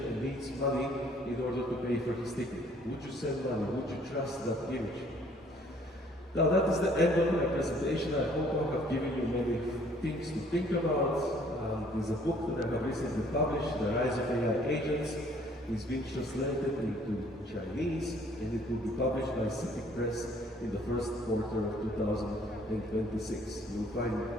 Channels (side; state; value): both; normal; correlation 0.59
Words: needs money in order to pay for his ticket? Would you send money? Would you trust that image? Now that is the end of my presentation. I hope I have given you many things to think about. There's a book that I have recently published, The Rise of AI Agents. It's been translated into Chinese and it will be published by CITIC Press in the first quarter of 2026. You'll find